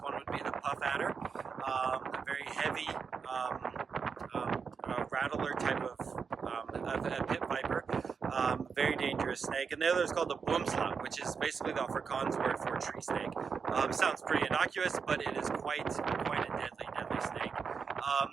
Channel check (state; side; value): quieter; left; 5.8 dB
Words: would be the puff adder, a very heavy rattler type of a pit viper, very dangerous snake. And the other is called the boomslang, which is basically the Afrikaans word for tree snake. Sounds pretty innocuous, but it is quite a deadly snake.